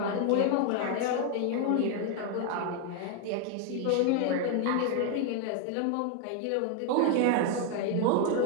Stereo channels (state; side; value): different; both; correlation 0.01